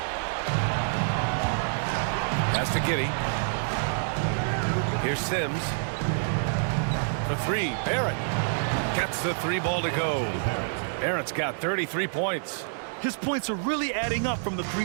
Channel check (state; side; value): silent; left; digital silence